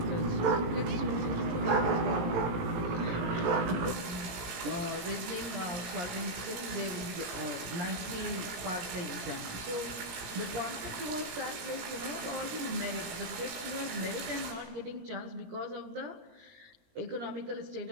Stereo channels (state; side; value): late; left; 17 ms